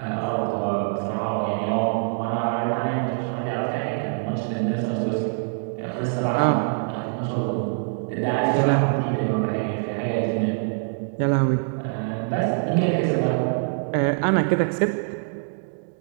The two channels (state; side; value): silent; left; digital silence